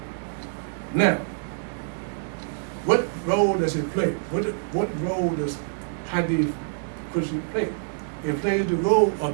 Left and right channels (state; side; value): silent; left; 61 dB below the other